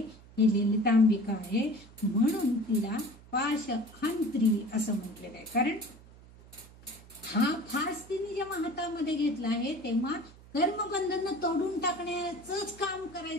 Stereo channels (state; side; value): noise; right; hum, 22 dB below the sound